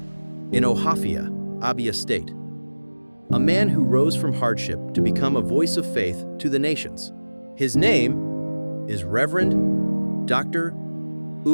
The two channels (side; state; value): both; inverted; correlation -1.00